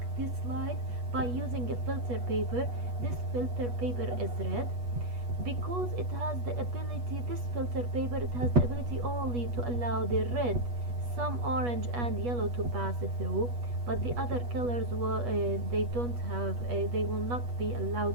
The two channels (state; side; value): late; left; 8.3 ms